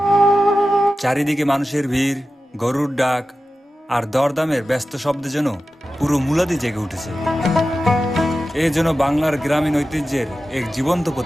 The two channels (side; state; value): both; normal; correlation 0.93